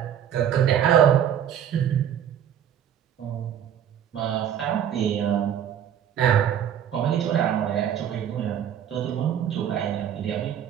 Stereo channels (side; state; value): left; quieter; 9.5 dB